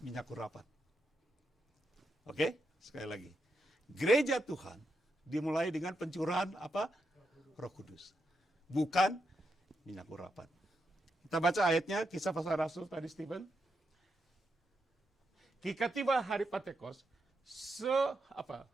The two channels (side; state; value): both; normal; correlation 0.84